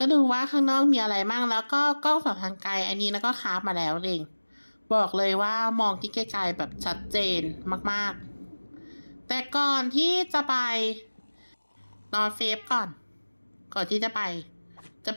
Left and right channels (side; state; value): both; inverted; correlation -1.00